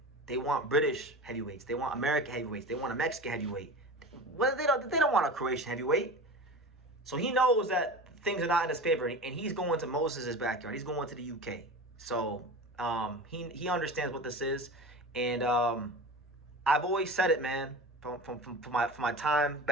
They want British heavyweights. They want American heavyweights. They want a Mexican heavyweight. Well, they don't want a Croatian heavyweight. So he knows that things are not in his favor, and he's going to Moses' backyard. He's going to the UK. So he understands what this is, and I've always said it, man. From my time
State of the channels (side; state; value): both; normal; correlation 0.32